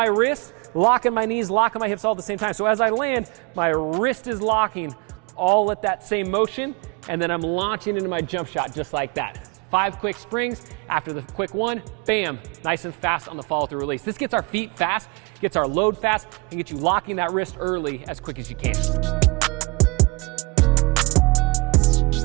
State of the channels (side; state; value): left; quieter; 28.1 dB